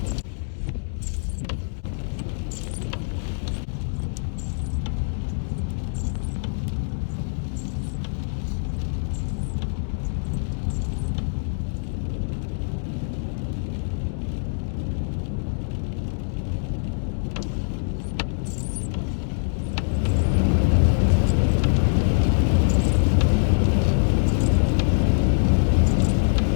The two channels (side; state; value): right; silent; digital silence